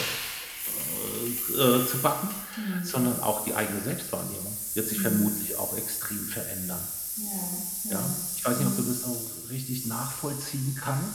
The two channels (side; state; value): both; identical; correlation 1.00